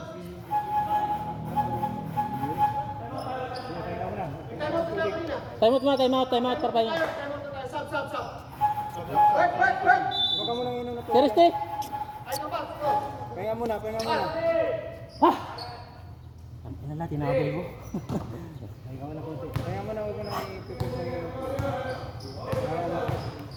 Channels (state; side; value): identical; both; correlation 1.00